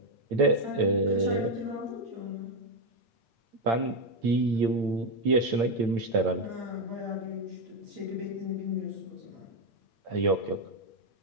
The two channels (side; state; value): left; late; 8.8 ms